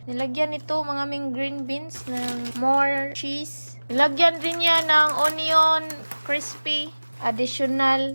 Nilagyan ito mga aming green beans ng more cheese. Nilagyan din niya ng onion crispy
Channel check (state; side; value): inverted; both; correlation -1.00